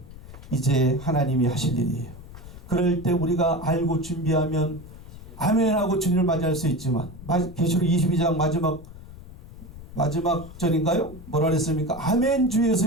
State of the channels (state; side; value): noise; left; rumble, 16 dB below the sound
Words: 이제 하나님이 하실 일이에요. 그럴 때 우리가 알고 준비하면 아멘하고 주님을 맞이할 수 있지만 계시록 22장 마지막 절인가요? 뭐라 그랬습니까? 아멘